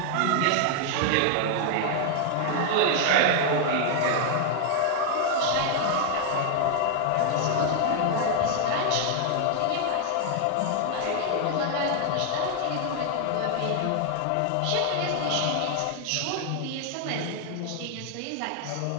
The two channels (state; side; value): different; both; correlation 0.00